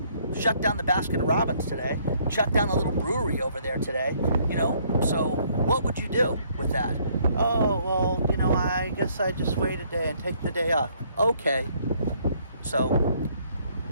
Shut down the Baskin Robbins today. Shut down the little brewery over there today. You know, so what would you do with that? Oh, well, you know, I guess I just wait a day and take the day off. Okay. So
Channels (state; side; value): inverted; both; correlation -0.65